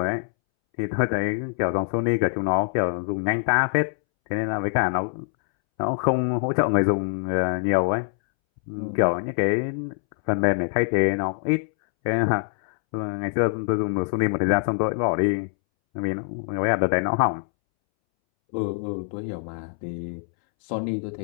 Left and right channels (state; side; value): silent; right; 62 dB below the other